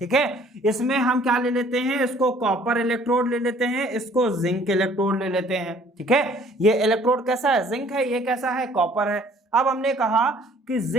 है। इसमें हम क्या ले लेते हैं, इसको कॉपर इलेक्ट्रोड ले लेते हैं, इसको जिंक इलेक्ट्रोड ले लेते हैं, ठीक है। ये इलेक्ट्रोड कैसा है, जिंक है, ये कैसा है, कॉपर है। अब हमने कहा कि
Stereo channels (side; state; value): both; normal; correlation 0.57